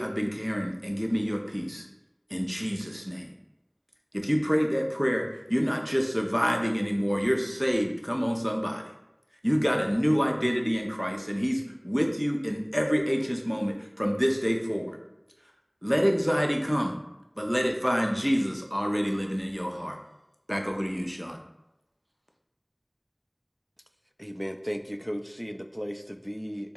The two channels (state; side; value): identical; both; correlation 1.00